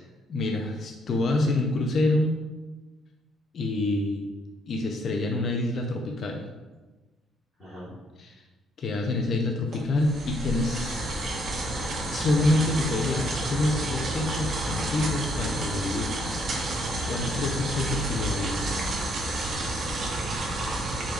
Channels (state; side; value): normal; both; correlation 0.70